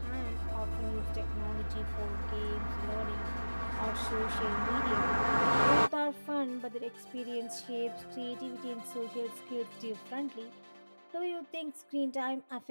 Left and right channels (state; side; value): inverted; both; correlation -1.00